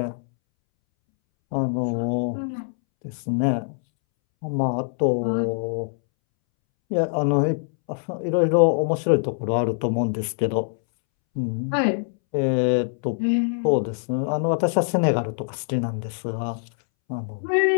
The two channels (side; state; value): right; silent; 63 dB below the other